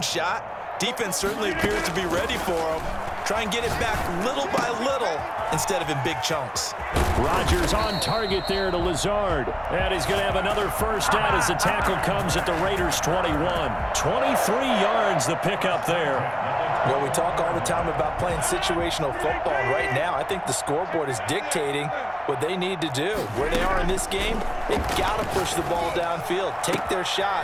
shot. Defense certainly appears to be ready for him. Try and get it back little by little instead of in big chunks. Rodgers on target there to Lazard. And he's going to have another first down as the tackle comes at the Raiders' 21. 23 yards the pickup there. Well, we talk all the time about playing situational football. Right now, I think the scoreboard is dictating what they need to do. Where they are in this game, they've got to push the ball downfield, take their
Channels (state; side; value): identical; both; correlation 1.00